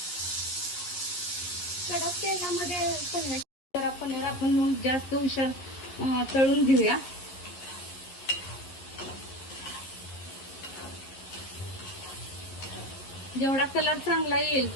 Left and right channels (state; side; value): late; right; 12 ms